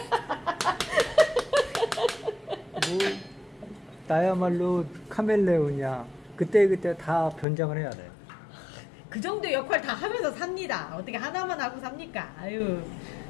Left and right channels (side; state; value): right; drops out; at 7.5 s